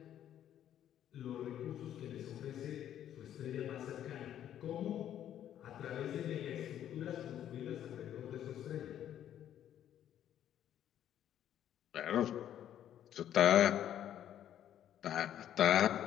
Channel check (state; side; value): quieter; right; 10.8 dB